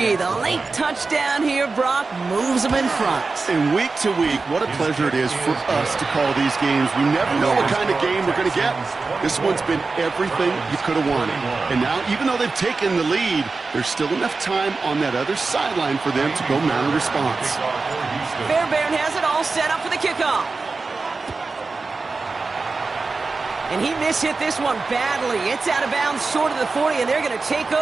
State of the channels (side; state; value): left; quieter; 4.0 dB